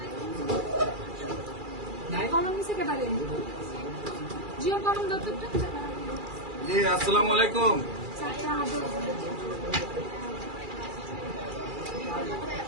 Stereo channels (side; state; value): left; late; 2.4 ms